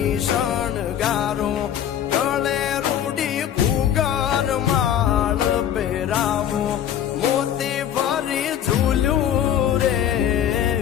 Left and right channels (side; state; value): right; quieter; 10.1 dB